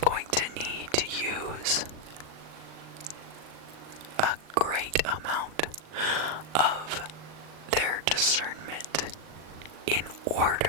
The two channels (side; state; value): left; late; 39 ms